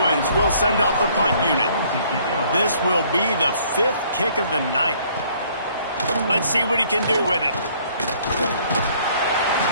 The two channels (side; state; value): both; inverted; correlation -0.61